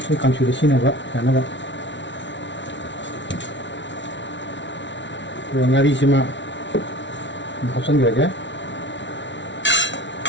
강추를 신어봐, 야나가. 영아리시마 합선자게.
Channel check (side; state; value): right; late; 0.53 ms